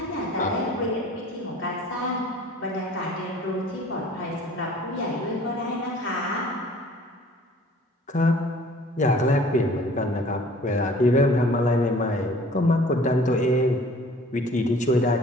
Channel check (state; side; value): normal; both; correlation 0.50